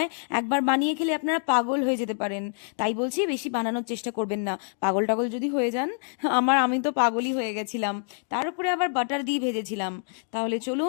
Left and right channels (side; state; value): right; silent; digital silence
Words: একবার বানিয়ে খেলে আপনারা পাগল হয়ে যেতে পারেন। তাই বলছি বেশি বানানোর চেষ্টা করবেন না, পাগল টাগল যদি হয়ে যান। আমি তো পাগলই হয়ে গেছিলাম। তার উপরে আবার বাটার দিয়ে ভেজেছিলাম। তাহলে